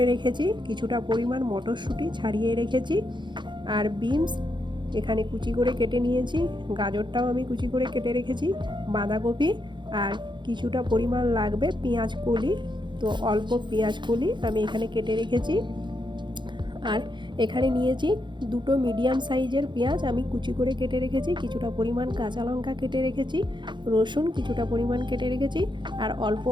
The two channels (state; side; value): late; left; 0.23 ms